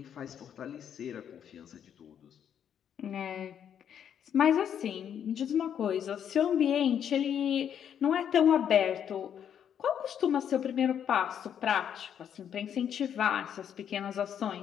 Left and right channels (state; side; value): quieter; right; 8.9 dB